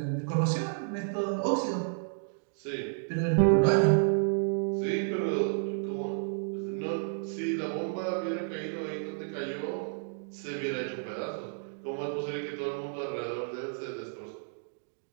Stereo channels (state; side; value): silent; left; 57 dB below the other